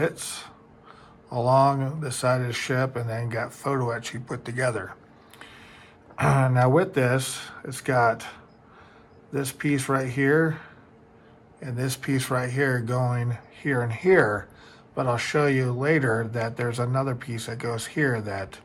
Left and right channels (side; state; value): both; identical; correlation 1.00